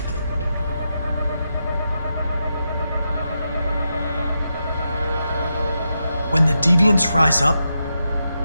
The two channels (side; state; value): both; inverted; correlation -0.86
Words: When the deviants rise up,